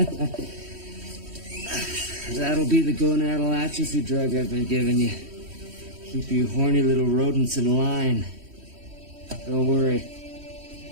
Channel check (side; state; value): left; late; 3.1 ms